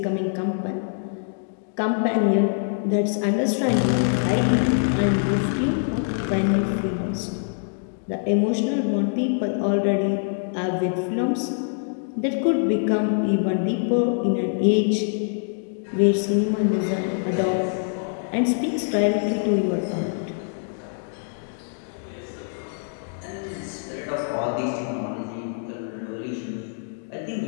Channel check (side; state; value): right; silent; digital silence